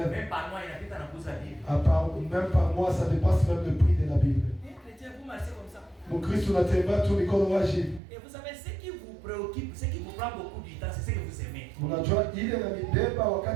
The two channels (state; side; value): drops out; left; at 8.0 s